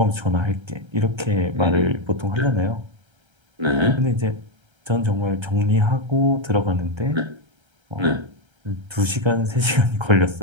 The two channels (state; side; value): late; left; 1.3 ms